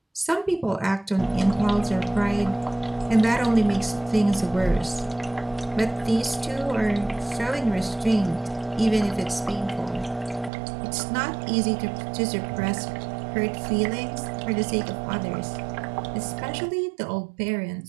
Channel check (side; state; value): left; drops out; at 10.5 s